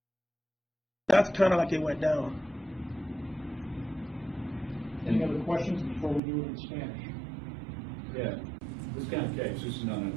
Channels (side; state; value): left; drops out; at 6.2 s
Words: That's kind of like it went down. Any other questions before we do it in Spanish? Yeah, this kind of case, this is not an